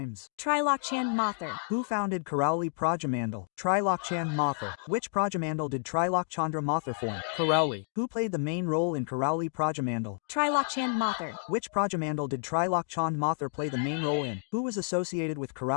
Trilokchand Mathur. Who founded Karauli Prajamandal? Trilokchand Mathur. Which Prajamandal did Trilokchandra Mathur form? Karauli. Who played the main role in Karauli Prajamandal? Trilokchand Mathur. Which Prajamandal did Trilokchand Mathur play the main role in? Who was associated with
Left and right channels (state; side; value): silent; right; digital silence